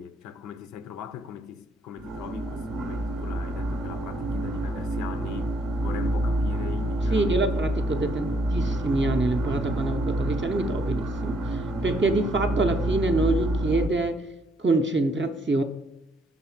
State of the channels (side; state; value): both; normal; correlation 0.70